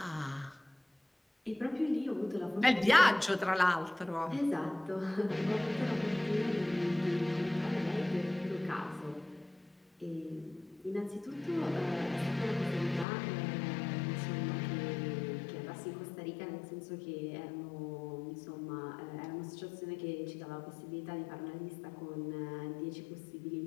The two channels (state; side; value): drops out; right; at 13.1 s